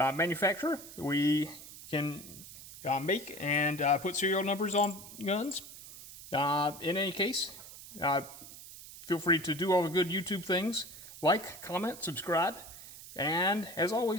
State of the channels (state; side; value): noise; right; hiss, 15 dB below the sound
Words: We can make and put serial numbers on guns. In any case, Feel free to do all the good YouTube things. Like, comment, subscribe. And as